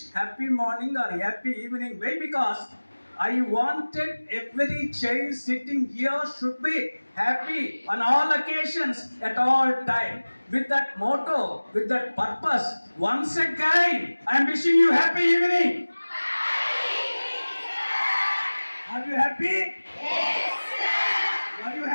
happy morning or happy evening. Why? Because I wanted every child sitting here should be happy on all occasions at all time. With that motto, with that purpose, once again, I am wishing you happy evening. Are you happy? Yes, sir. Are you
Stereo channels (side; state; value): both; inverted; correlation -1.00